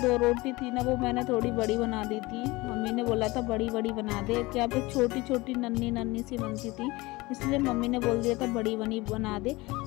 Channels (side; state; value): right; quieter; 21.9 dB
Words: रोटी थी ना, वो मैंने थोड़ी बड़ी बना दी थी। मम्मी ने बोला था बड़ी बड़ी बना दे, क्या पे छोटी छोटी नन्ही नन्ही सी बनती थी, इसलिए मम्मी ने बोल दिया था बड़ी बनी बना दे।